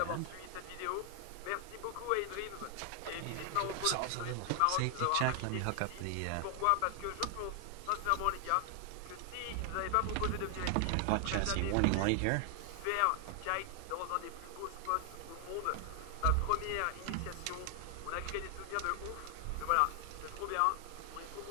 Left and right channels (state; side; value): different; both; correlation 0.00